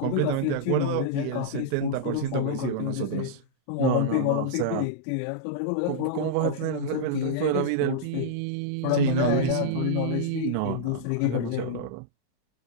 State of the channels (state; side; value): different; both; correlation -0.02